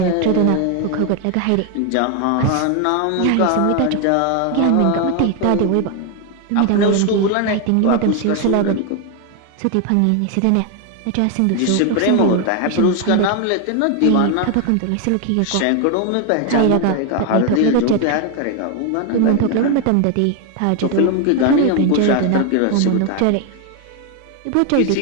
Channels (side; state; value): both; different; correlation 0.01